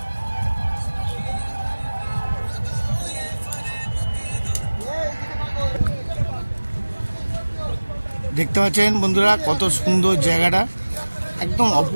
দেখতে পাচ্ছেন বন্ধুরা কত সুন্দর জায়গাটা, একদম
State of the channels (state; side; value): inverted; both; correlation -1.00